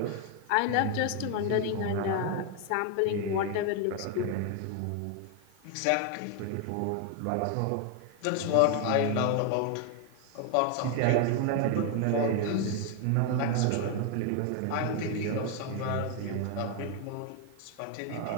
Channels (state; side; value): different; both; correlation 0.01